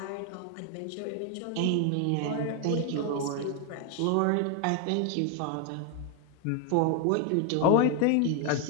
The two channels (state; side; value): different; both; correlation 0.01